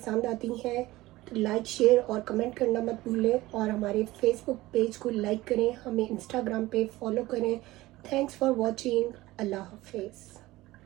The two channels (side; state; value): left; quieter; 18.2 dB